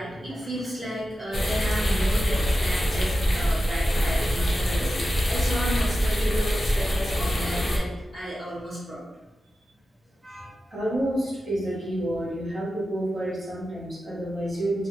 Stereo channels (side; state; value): both; normal; correlation 0.92